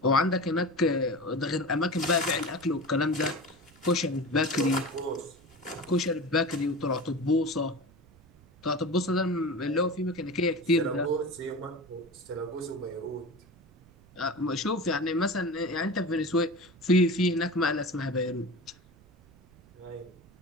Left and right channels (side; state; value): right; noise; rumble, 26 dB below the sound